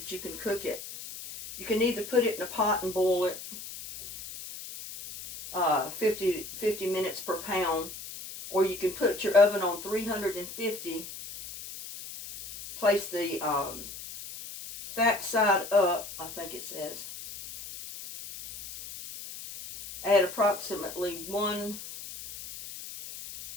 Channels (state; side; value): noise; left; hiss, 11 dB below the sound